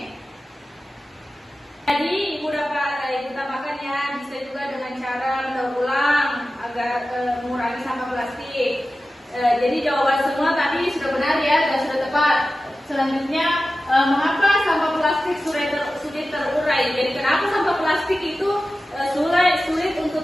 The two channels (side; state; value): both; normal; correlation 0.94